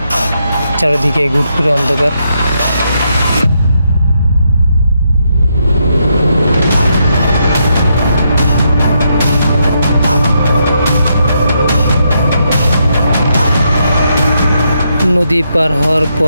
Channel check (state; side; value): inverted; both; correlation -0.79